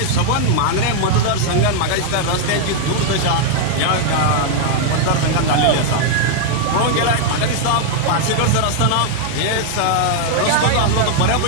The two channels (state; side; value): different; both; correlation 0.00